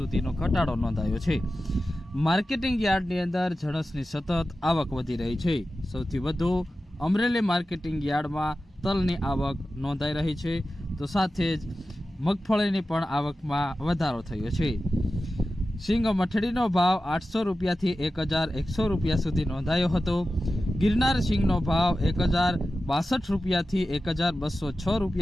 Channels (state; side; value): normal; both; correlation 0.93